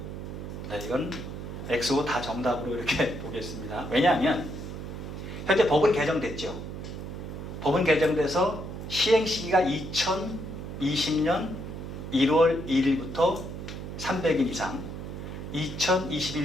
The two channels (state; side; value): noise; right; hum, 8 dB below the sound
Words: 네, 이건 X, O 다 정답으로 이렇게 보겠습니다. 왜냐하면 현재 법은 개정됐죠. 법은 개정돼서 시행시기가 2020년 1월 1일부터 300인 이상,